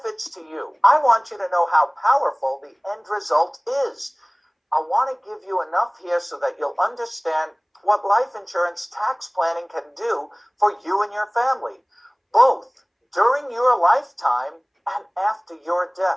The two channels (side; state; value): both; identical; correlation 1.00